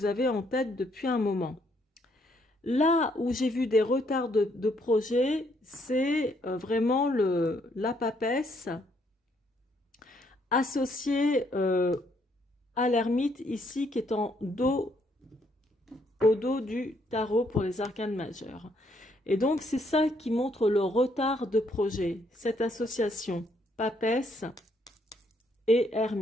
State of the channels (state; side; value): normal; both; correlation 0.71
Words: avez en tête depuis un moment. Là où j'ai vu des retards de projet, c'est vraiment la papesse associée à l'ermite ici qui est au dos du tarot pour les arcanes majeures. Et donc, c'est ça qui montre le retard de projet, cette association papesse et